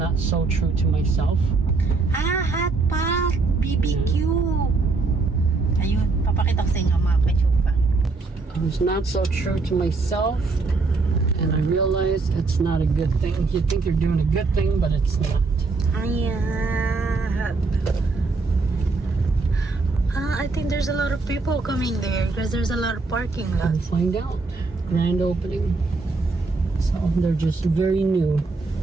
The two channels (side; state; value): left; quieter; 3.9 dB